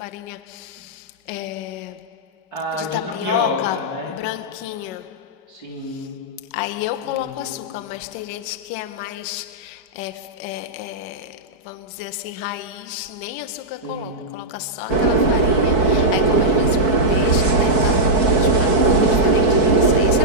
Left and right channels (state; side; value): late; right; 4.6 ms